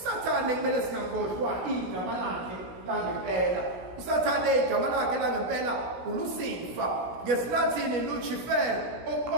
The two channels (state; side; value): late; left; 16 ms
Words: kumele singakhohlwa igama lakhe langempela. Usathane igama lakhe langempela uLucifer, ngesiLatini Lucifer,